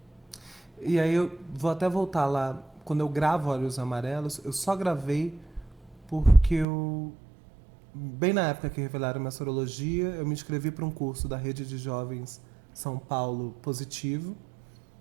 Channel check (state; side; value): drops out; left; at 6.7 s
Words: e aí eu vou até voltar lá. Quando eu gravo Olhos Amarelos, eu só gravei porque eu. Bem na época que revelaram minha sorologia, eu me inscrevi para um curso da Rede de Jovens São Paulo Positivo,